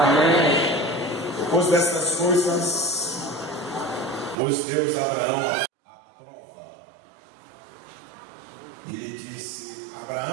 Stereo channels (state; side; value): drops out; left; at 4.4 s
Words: Depois dessas coisas, pôs Deus a Abraão à prova e lhe disse: